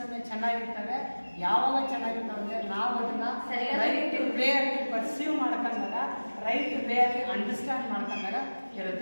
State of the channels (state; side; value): inverted; both; correlation -1.00